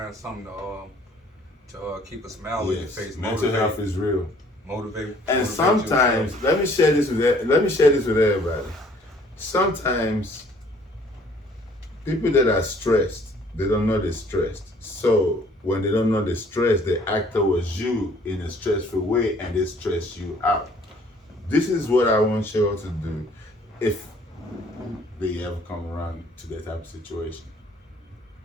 something to keep a smile on your face. Mental health is real. Motivate. And sometimes, let me share this with everybody. Sometimes people that are stressed, they don't know they're stressed. So when they don't know they're stressed, they act towards you in a stressful way, and they stress you out. This is what I want you all to do if they ever come around to that type of situation.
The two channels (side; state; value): both; normal; correlation 0.58